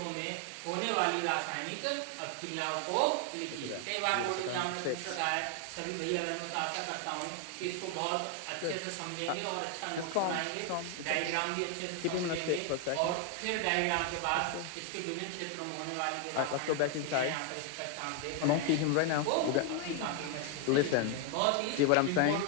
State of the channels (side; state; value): both; different; correlation 0.01